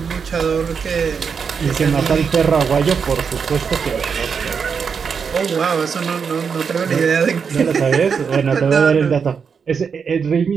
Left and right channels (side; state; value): left; quieter; 6.2 dB